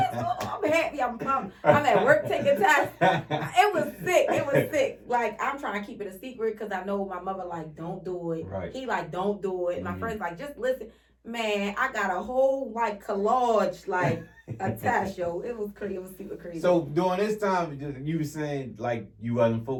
going on? I'm happy. I'm pumped. I'm at work taking tests. It was sick. Like, I'm trying to keep it a secret because I know my mother like, don't do it. Right. He like, don't do it. My friend's like, just listen. Man, I got a whole like collage, like a test, yo. It was crazy. It was super crazy. So during this time, you were saying like you wasn't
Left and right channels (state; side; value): identical; both; correlation 1.00